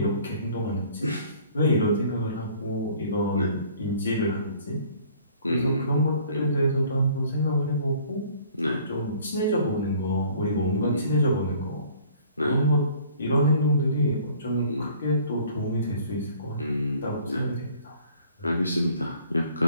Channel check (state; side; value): inverted; both; correlation -0.54